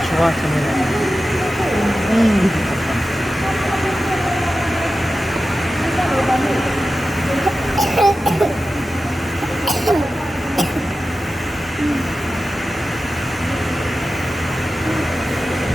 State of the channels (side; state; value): both; normal; correlation 0.93